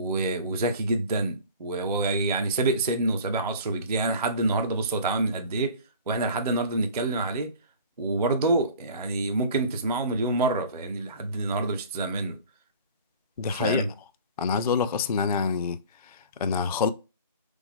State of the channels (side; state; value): both; inverted; correlation -0.43